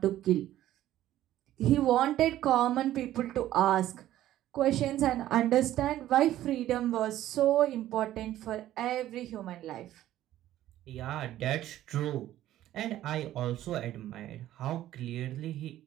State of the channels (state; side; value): quieter; left; 13.5 dB